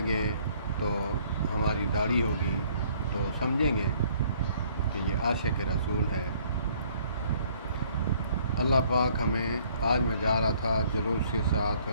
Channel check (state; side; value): inverted; both; correlation -0.61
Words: तो हमारी दाढ़ी होगी तो समझेंगे कि ये आशिक़ रसूल है। अल्लाह पाक हमें, आज मैं जा रहा था जुलूस के साथ,